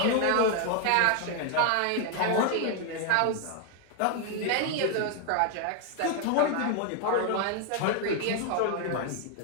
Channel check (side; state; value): both; different; correlation 0.00